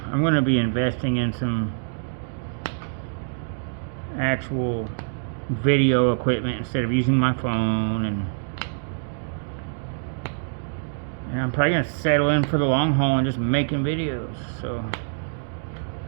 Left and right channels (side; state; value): left; silent; digital silence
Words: I'm going to be investing in some actual video equipment instead of using my phone, and I'm probably going to settle in for the long haul and just making videos. So